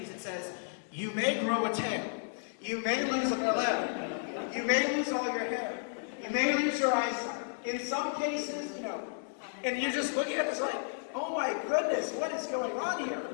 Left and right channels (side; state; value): right; silent; 56 dB below the other